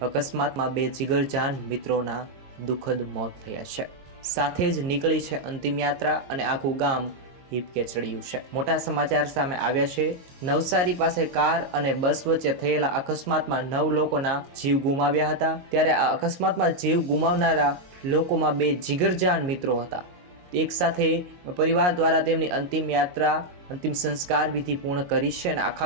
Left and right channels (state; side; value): late; left; 22 ms